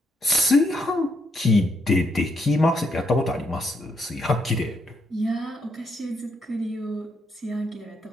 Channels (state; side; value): normal; both; correlation 0.76